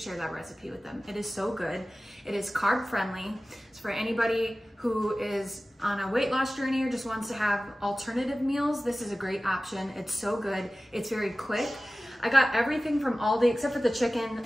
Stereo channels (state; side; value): normal; both; correlation 0.96